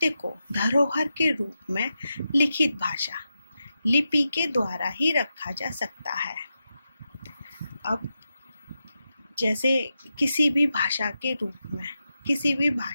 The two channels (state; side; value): inverted; both; correlation -0.88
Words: को धरोहर के रूप में लिखित भाषा लिपि के द्वारा ही रखा जा सकता है। अब जैसे किसी भी भाषा के रूप में किसी भी